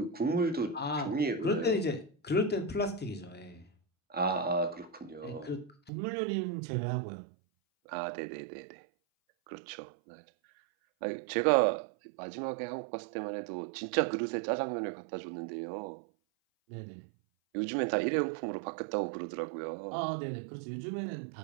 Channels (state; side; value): drops out; left; at 5.9 s